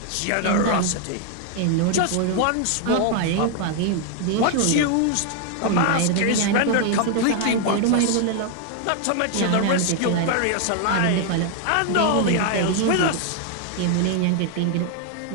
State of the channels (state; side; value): different; both; correlation 0.00